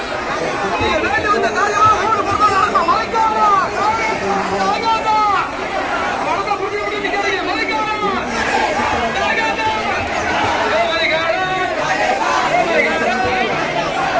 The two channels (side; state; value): both; identical; correlation 1.00